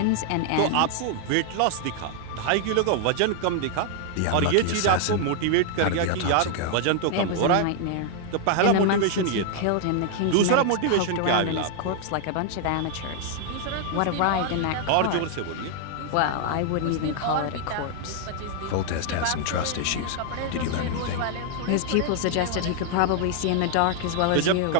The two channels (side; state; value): both; different; correlation 0.00